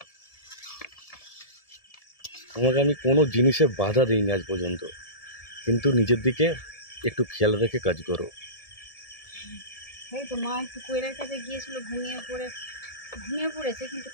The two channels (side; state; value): right; late; 1.7 ms